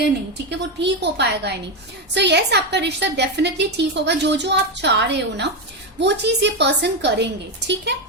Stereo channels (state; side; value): normal; both; correlation 0.11